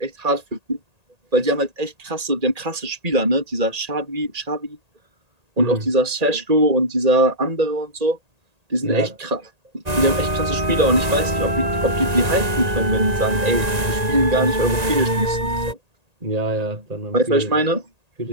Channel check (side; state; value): left; late; 1.8 ms